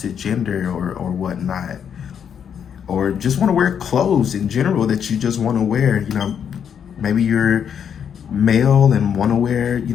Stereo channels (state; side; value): quieter; right; 8.0 dB